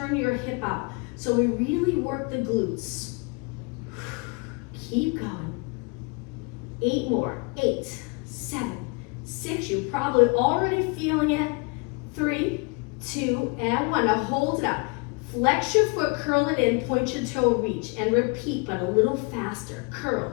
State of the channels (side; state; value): right; quieter; 31.3 dB